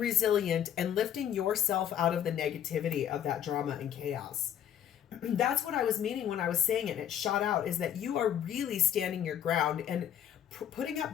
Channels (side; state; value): right; quieter; 10.1 dB